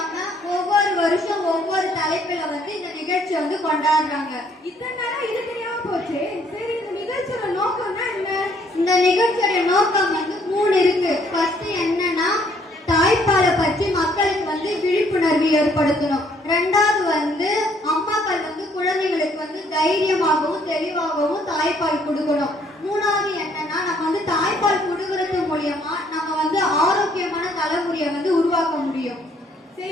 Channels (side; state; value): both; normal; correlation 0.65